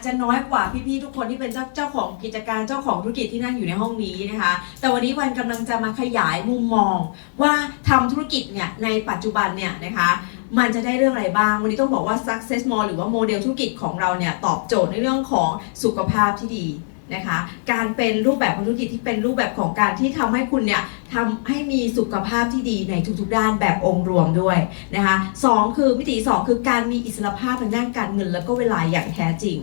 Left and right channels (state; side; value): silent; right; digital silence